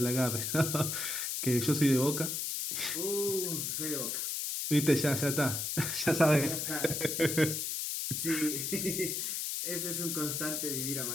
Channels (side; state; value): left; noise; hiss, 2 dB below the sound